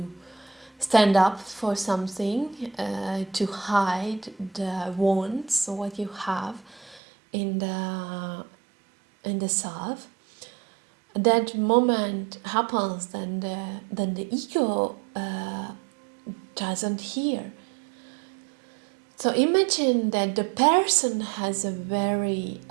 stand up for something, to hide the wounds, what you have in the self, that moment happens, then the ego doesn't hear. So imagine that the person has a very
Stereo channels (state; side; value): drops out; left; at 7.0 s